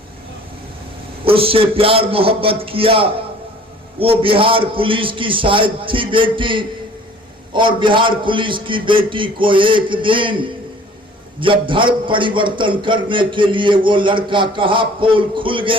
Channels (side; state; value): both; normal; correlation 0.51